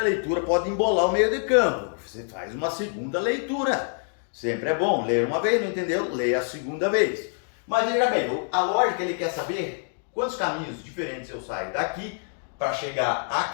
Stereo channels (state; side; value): silent; right; 61 dB below the other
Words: leitura pode embolar o meio de campo. Você faz uma segunda leitura. Sempre é bom ler uma vez, não entendeu? Leia a segunda vez. Mas veja bem, a lógica ele quer saber quantos caminhos diferentes eu saio daqui para chegar